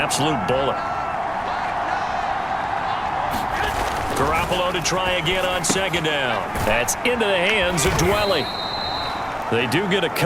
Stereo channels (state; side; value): identical; both; correlation 1.00